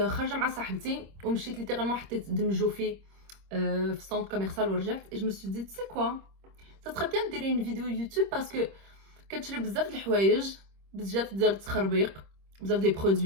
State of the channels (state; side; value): late; left; 26 ms